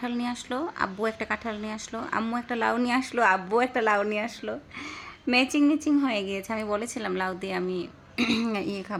নিয়ে আসলো, আব্বু একটা কাঁঠাল নিয়ে আসলো, আম্মু একটা লাউ নিয়ে আসলো, আব্বু একটা লাউ নিয়ে আসলো। ম্যাচিং হয়ে গিয়েছে। আমি বলেছিলাম লাউ দিয়ে আমি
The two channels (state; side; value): identical; both; correlation 1.00